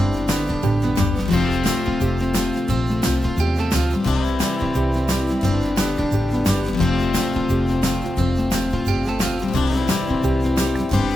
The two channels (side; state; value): both; normal; correlation 0.89